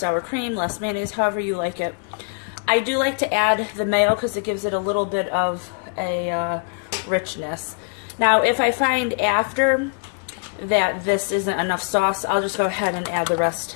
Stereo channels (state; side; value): quieter; right; 34.7 dB